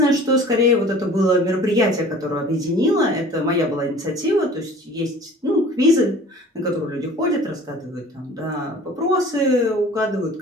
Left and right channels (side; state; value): both; normal; correlation 0.46